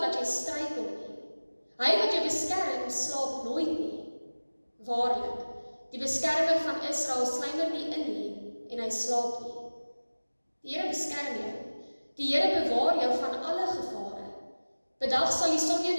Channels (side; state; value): both; inverted; correlation -1.00